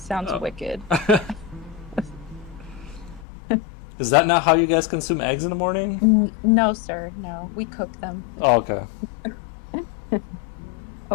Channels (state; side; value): drops out; right; at 3.2 s